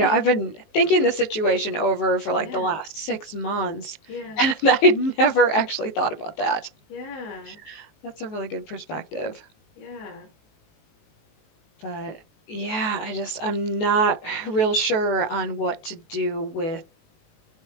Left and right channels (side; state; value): right; late; 19 ms